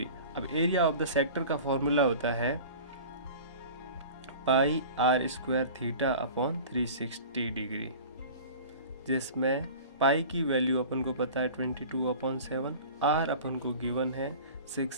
अब एरिया ऑफ द सेक्टर का फॉर्मूला होता है पाई are square theta upon 360 degree, जिसमें पाई की वैल्यू अपन को पता है 22/7, आर अपन को गिवन है 6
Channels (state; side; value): inverted; both; correlation -0.39